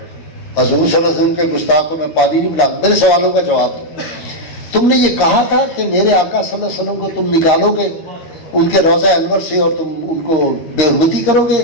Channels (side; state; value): right; late; 13 ms